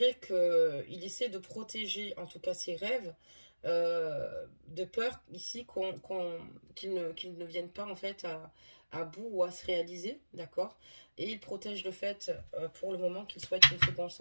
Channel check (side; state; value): both; inverted; correlation -1.00